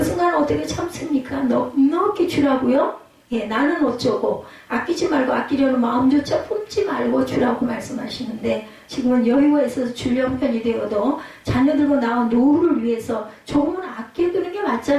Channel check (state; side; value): identical; both; correlation 1.00